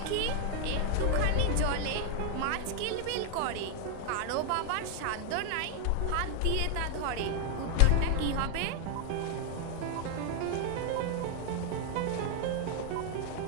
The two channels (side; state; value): both; different; correlation 0.00